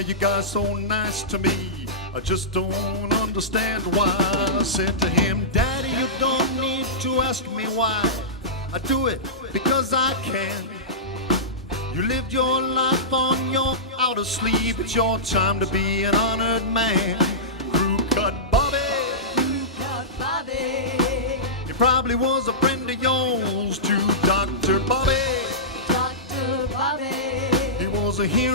you guys so nice to me? I just don't understand why. I said to him, Daddy, you don't need to ask me why. I do it because I can. You lived your life on your outer sleeve. It's your time to be an honored man. Crew cut Bobby. Cut Bobby. He probably was a friend of yours to Dr. Bobby. Dr. Bobby. He was a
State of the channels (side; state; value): both; normal; correlation -0.17